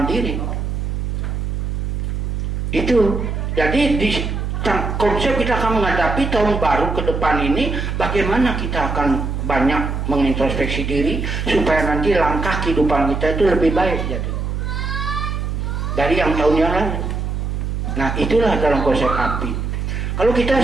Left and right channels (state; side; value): noise; right; hum, 2 dB below the sound